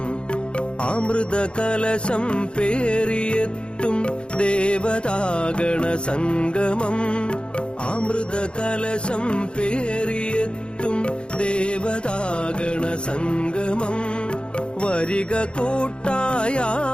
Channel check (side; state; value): right; late; 0.055 ms